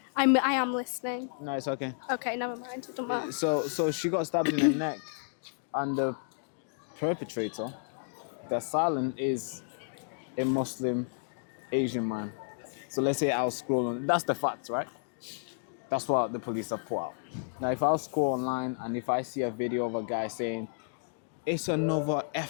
I am listening. No, it's okay. Okay, never mind. It don't matter. So she got stabbed in the neck, and the perpetrator, the assailant, is a Muslim Asian man. So let's say I'll scroll on. That's the fact, right? That's what the police have put out. Now, if I'll scroll online and if I see a video of a guy saying, "It's another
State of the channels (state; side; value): silent; right; digital silence